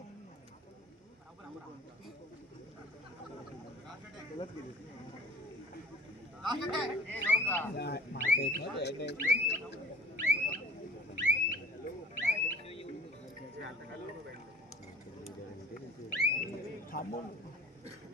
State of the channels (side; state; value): both; normal; correlation 0.46